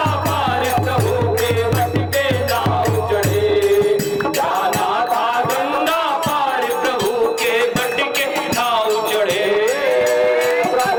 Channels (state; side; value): identical; both; correlation 1.00